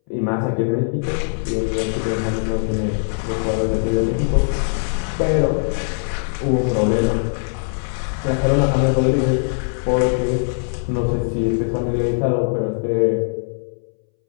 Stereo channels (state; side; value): silent; right; 64 dB below the other